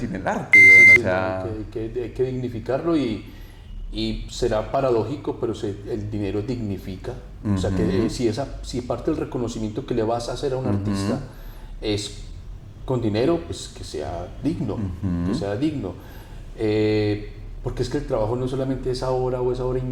el arte? Sí, o sea... hay que dignificarlo y será paradójico, pero el dinero dignifica. O sea, que si parte del reconocimiento que le vas a hacer a un artista es con dinero, pues que sea digno, que sea digno. Porque es que el trabajo no es solamente esa hora o esa hora y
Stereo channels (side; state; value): both; identical; correlation 1.00